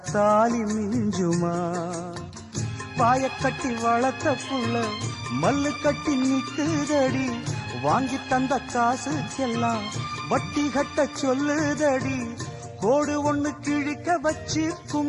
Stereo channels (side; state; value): both; identical; correlation 1.00